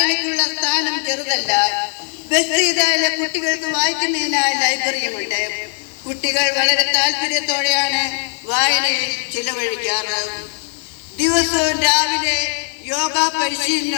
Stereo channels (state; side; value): silent; right; 58 dB below the other